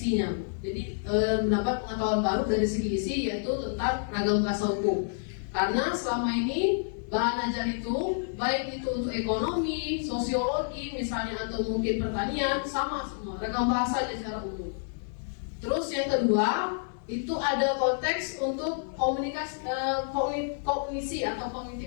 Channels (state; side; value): silent; right; digital silence